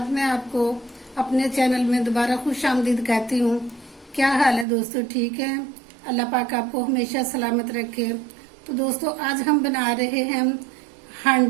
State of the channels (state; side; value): drops out; left; at 4.7 s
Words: मैं आपको अपने चैनल में दोबारा खुश आमदीद कहती हूँ। क्या हाल है दोस्तों, ठीक है? अल्लाह पाक आपको हमेशा सलामत रखे। तो दोस्तों आज हम बना रहे हैं